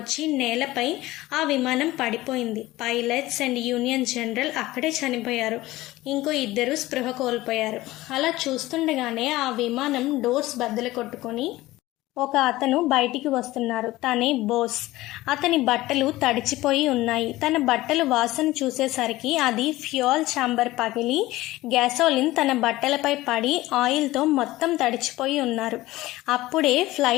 నేలపై ఆ విమానం పడిపోయింది. పైలట్స్ అండ్ యూనియన్ జనరల్ అక్కడే చనిపోయారు. ఇంకో 2 స్పృహ కోల్పోయారు. అలా చూస్తుండగానే ఆ విమానం డోర్స్ బద్దలు కొట్టుకొని ఒక అతను బయటికి వస్తున్నారు. తనే బోస్. అతని బట్టలు తడిచిపోయి ఉన్నాయి. తన బట్టలు వాసన చూసేసరికి అది ఫ్యూయల్ ఛాంబర్ పగిలి గ్యాసోలిన్ తన బట్టలపై పడి ఆయిల్తో మొత్తం తడిచిపోయి ఉన్నారు. అప్పుడే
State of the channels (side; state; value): right; quieter; 17.8 dB